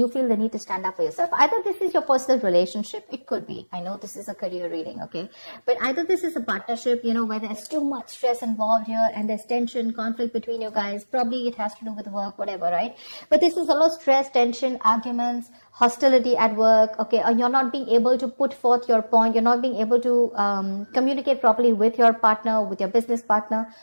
feel the need to stand up for yourself. Either this is your personal relationship, it could be. I know this is a career reading, okay? But either this is a partnership, you know, where there's too much stress involved here and there's tension, conflict between you guys. Probably it has to do with work, whatever, right? But this is a lot of stress, tension, arguments, hostility at work, okay? Or you're not being able to put forth your point. You're not being able to communicate properly with your partner, with your business partner,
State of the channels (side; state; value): both; inverted; correlation -1.00